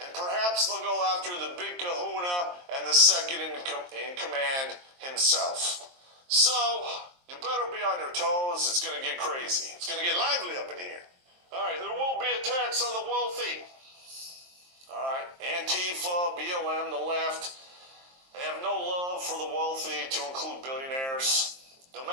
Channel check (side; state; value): left; late; 23 ms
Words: perhaps they'll go after the big kahuna and the second in command himself. So, you better be on your toes. It's going to get crazy. It's going to get lively up in here. All right, there will be attacks on the wealthy. All right, Antifa, BLM, the left, they have no love for the wealthy, to include billionaires. No